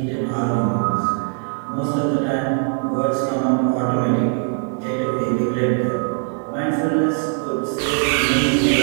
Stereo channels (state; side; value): quieter; left; 38.6 dB